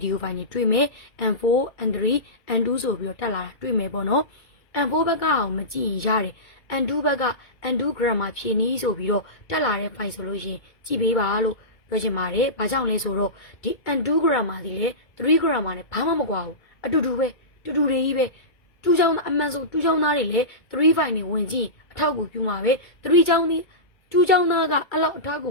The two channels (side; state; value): right; late; 2.2 ms